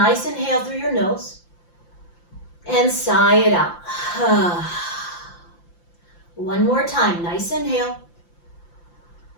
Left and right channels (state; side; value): late; right; 5.8 ms